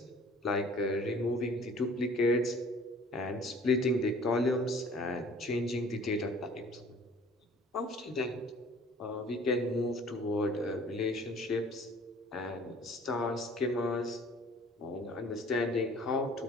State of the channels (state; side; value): normal; both; correlation 0.51